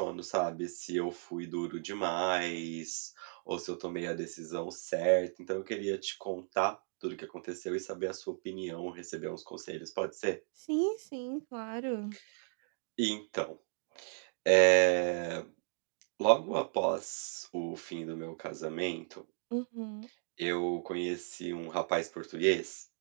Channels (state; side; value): silent; left; digital silence